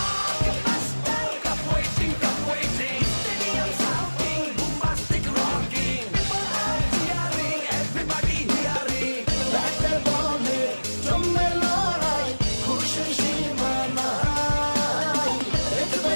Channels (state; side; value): inverted; both; correlation -1.00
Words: Blockbuster, cup waiting, cup waiting. Stadium shouting, bombastic rocking. People are cheering, everybody hearing. ব্যাটে বলে জমে লড়াই খুশি সীমা নাই দেখবে